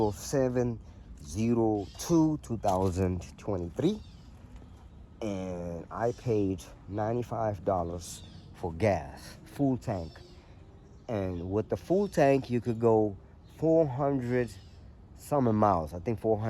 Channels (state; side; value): identical; both; correlation 1.00